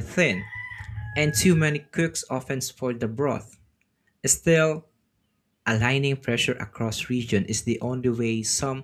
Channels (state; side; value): identical; both; correlation 1.00